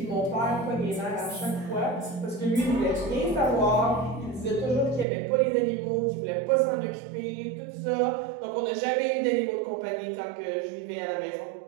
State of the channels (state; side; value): drops out; left; at 5.1 s